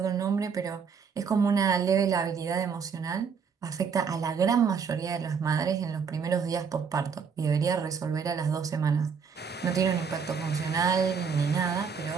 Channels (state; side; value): quieter; left; 6.1 dB